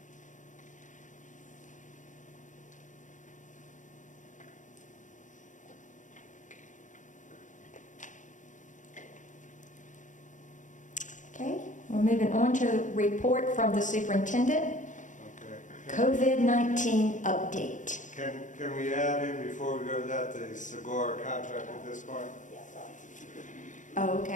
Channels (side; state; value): right; late; 0.36 ms